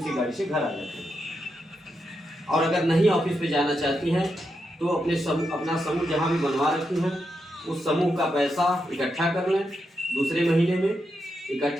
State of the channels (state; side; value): normal; both; correlation 0.84